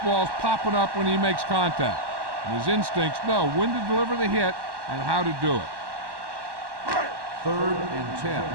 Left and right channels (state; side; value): late; left; 1.1 ms